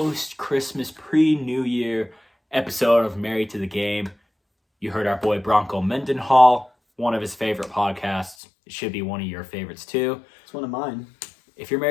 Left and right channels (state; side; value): drops out; right; at 8.3 s